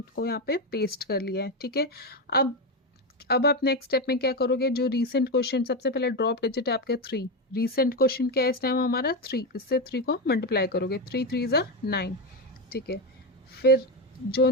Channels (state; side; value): normal; both; correlation 0.12